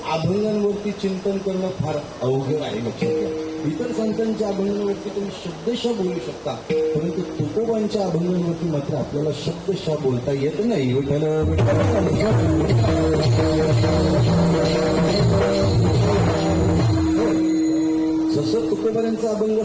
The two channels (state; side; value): identical; both; correlation 1.00